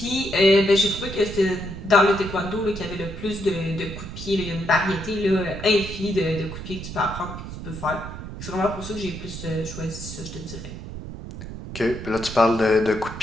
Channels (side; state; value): right; noise; rumble, 10 dB below the sound